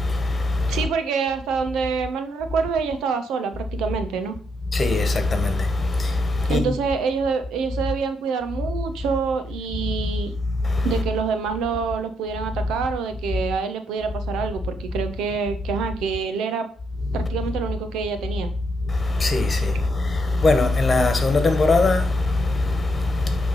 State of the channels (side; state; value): both; normal; correlation 0.77